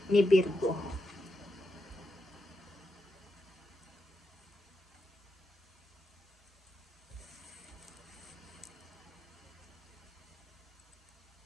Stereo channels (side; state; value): both; normal; correlation 0.87